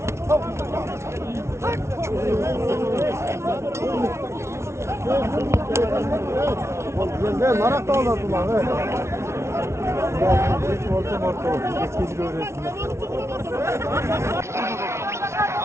Ben marak da olardım lan. Evet. Hiç orta. Eskeci öğretsinler.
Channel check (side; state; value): left; late; 0.13 ms